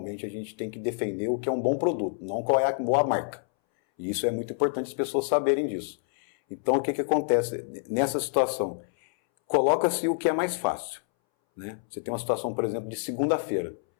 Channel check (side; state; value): right; silent; 60 dB below the other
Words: a gente tem que defender o que é um bom produto, não qual é a boa marca. E isso é muito importante as pessoas saberem disso. Então o que acontece nessa situação? Coloca-se o que é mais fácil, né? Você tem uma situação, por exemplo, de segunda-feira.